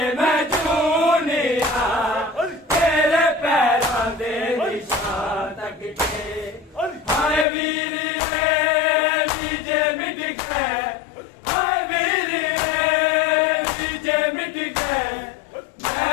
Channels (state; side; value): drops out; right; at 7.5 s